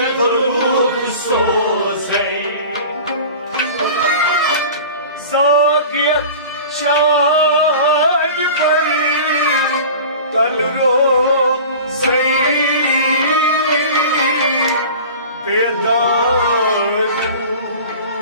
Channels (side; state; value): both; inverted; correlation -0.38